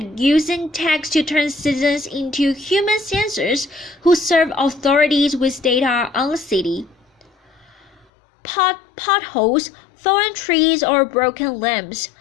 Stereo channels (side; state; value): right; drops out; at 8.1 s